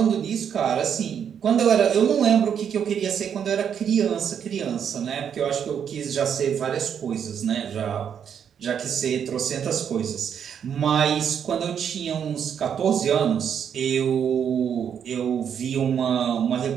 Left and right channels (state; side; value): quieter; left; 8.1 dB